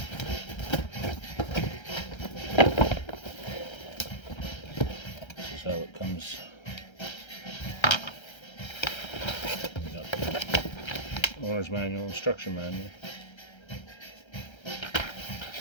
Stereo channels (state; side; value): late; right; 1.3 ms